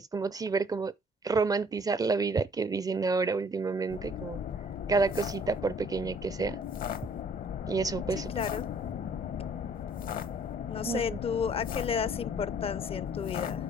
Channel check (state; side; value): normal; both; correlation 0.57